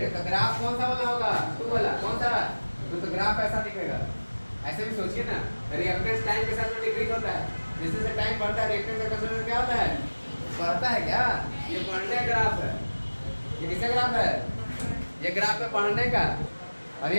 तो ग्राफ कौन सा वाला होगा? 2 वाला। कौन सा? तो ग्राफ ऐसा दिखेगा। ऐसे भी सोचिए ना, रिएक्टेंस टाइम के साथ में डिक्रीज होता है। जैसे जैसे टाइम बढ़ता है रिएक्टेंस का कंसंट्रेशन क्या होता है? बढ़ता है क्या? ये बढ़ने का ग्राफ है। ये किसका ग्राफ है? ये ग्राफ है बढ़ने का, और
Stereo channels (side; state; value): both; inverted; correlation -1.00